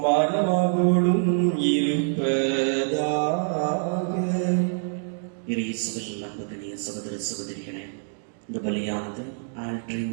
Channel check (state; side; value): silent; left; digital silence